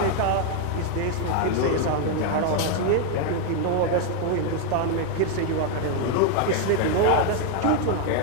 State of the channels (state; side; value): different; both; correlation 0.01